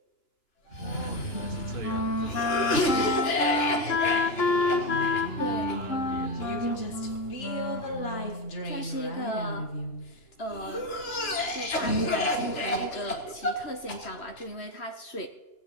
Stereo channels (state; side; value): late; right; 2.9 ms